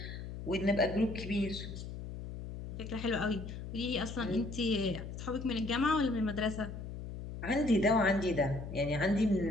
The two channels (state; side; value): noise; left; hum, 9 dB below the sound